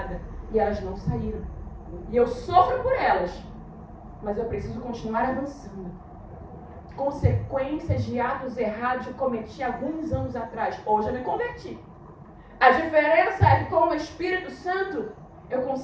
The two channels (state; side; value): identical; both; correlation 1.00